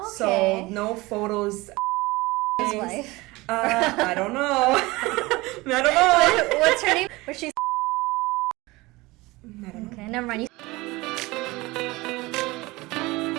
So no photos. His wife. I don't know. I don't know. What's her name? Was she? I don't know. Okay, never mind.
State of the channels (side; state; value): left; quieter; 21.7 dB